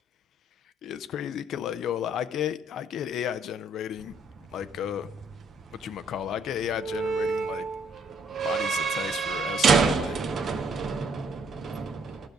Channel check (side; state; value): both; normal; correlation 0.65